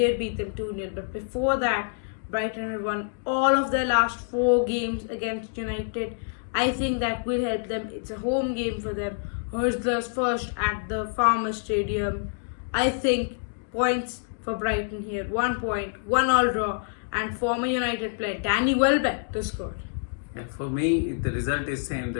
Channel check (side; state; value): right; silent; digital silence